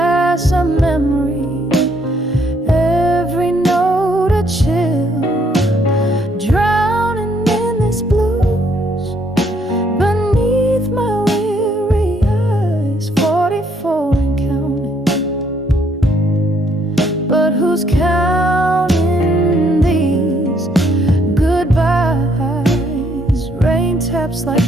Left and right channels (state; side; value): normal; both; correlation 0.69